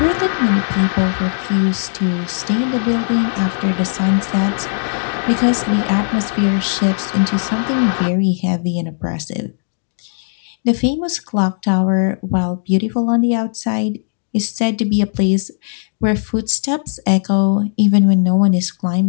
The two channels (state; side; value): silent; right; digital silence